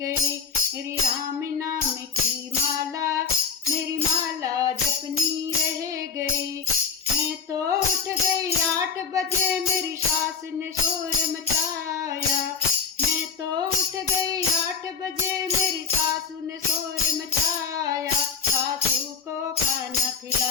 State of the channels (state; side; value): quieter; right; 5.9 dB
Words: मेरी राम नाम की माला, मेरी माला जपनी रह गई। मैं तो उठ गई 8 बजे, मेरी सास ने शोर मचाया। मैं तो उठ गई 8 बजे, मेरी सासू ने शोर मचाया। सासू को खाना